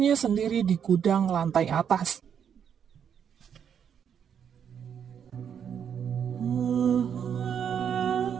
sendiri di gudang lantai atas.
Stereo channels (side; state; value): left; quieter; 8.1 dB